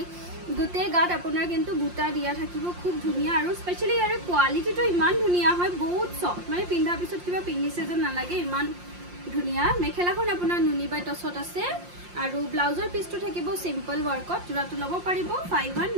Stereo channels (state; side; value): late; left; 5.7 ms